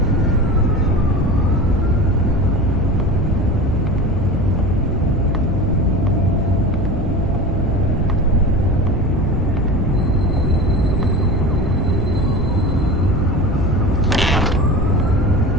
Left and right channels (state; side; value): normal; both; correlation 0.31